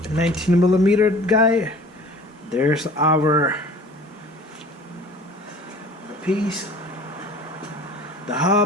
19mm guy. There's our piece. The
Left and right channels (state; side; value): normal; both; correlation 0.46